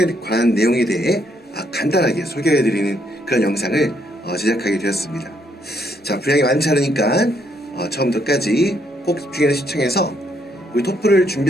관한 내용에 대해 간단하게 소개해드리는 그런 영상을 제작하게 되었습니다. 자, 분량이 많지 않으니까 처음부터 끝까지 꼭 집중해서 시청해서 우리 토플을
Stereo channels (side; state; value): both; normal; correlation 0.72